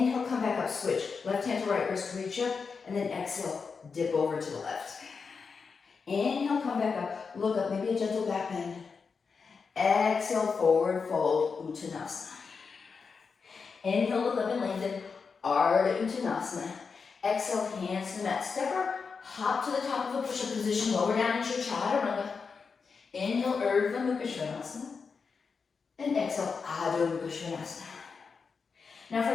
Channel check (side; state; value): right; quieter; 5.3 dB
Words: come back up, switch. Left hand to right wrist, reach up, and then exhale, dip over to the left. Inhale, come back up, look up, maybe a gentle back bend. Exhale, forward fold, Uttanasana. Inhale, look up and lengthen, Ardha Uttanasana. Exhale, hands to the mat. Stepper, hop to the top of a push-up position, lower down into your chaturanga. Inhale, Urdhva Mukha Svanasana. And exhale, Adho Mukha Svanasana. Now